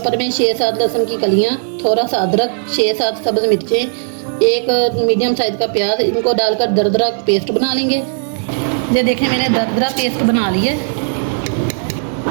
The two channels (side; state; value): left; silent; 65 dB below the other